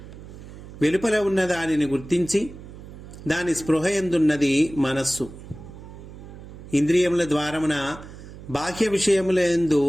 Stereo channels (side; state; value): right; noise; hum, 15 dB below the sound